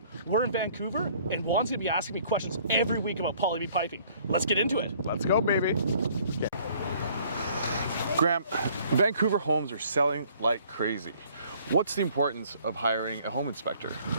We're in Vancouver, and Juan's gonna be asking me questions every week about Blvd piping. Let's get into it. Let's go, baby. Okay. Graham, Vancouver homes are selling like crazy. What's the importance of hiring a home inspector?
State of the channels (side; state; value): both; inverted; correlation -0.58